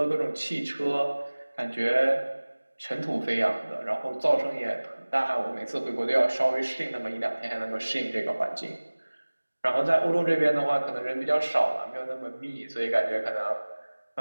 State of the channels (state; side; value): inverted; both; correlation -1.00